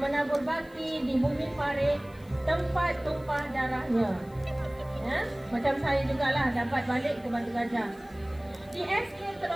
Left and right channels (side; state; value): left; noise; hiss, 28 dB below the sound